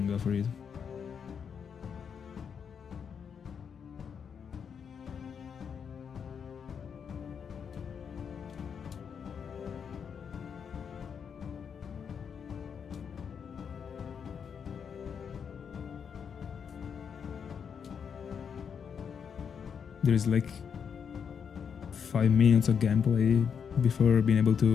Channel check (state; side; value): quieter; right; 7.0 dB